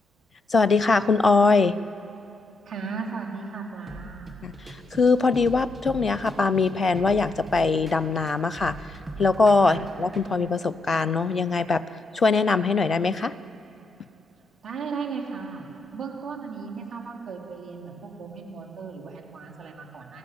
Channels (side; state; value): right; quieter; 3.2 dB